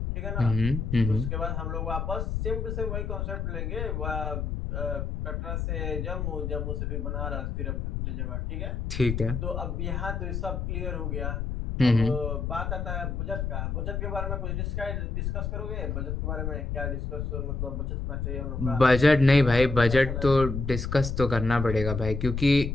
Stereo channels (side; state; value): left; noise; rumble, 3 dB below the sound